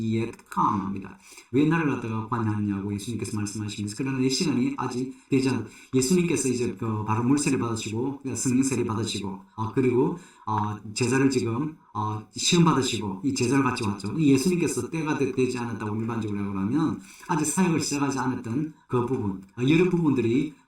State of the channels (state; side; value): identical; both; correlation 1.00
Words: come. 합니다. 왜 나를 갖다가 관여하냐고 예수님께서 말씀하시면서 그러나 내 시간이 아직 되지 않아. 예수님께서 이제 바로 물세를 받으시고 성령세를 받으시고 그리고 제자를 지금 시험 받으시고 이 제자를 같이 왔죠. 예수님께서 때가 되지 않았다고 일반적으로 하면 아직 사역을 시작하지 않았던 그 부분, 여러 부분들이